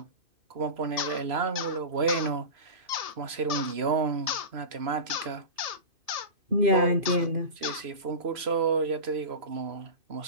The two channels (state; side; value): late; left; 3.0 ms